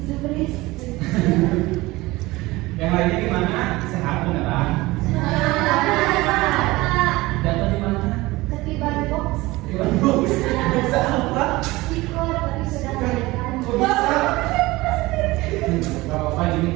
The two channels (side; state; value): left; quieter; 20.3 dB